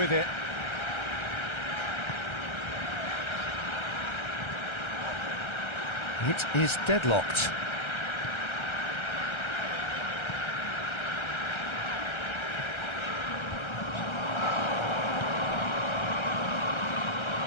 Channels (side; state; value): right; late; 1.3 ms